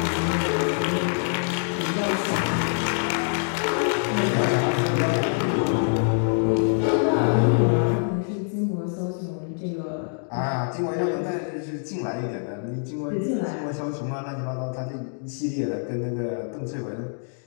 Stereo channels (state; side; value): silent; right; digital silence